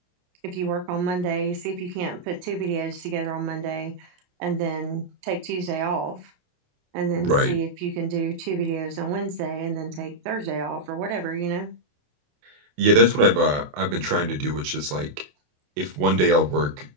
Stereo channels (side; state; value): left; late; 28 ms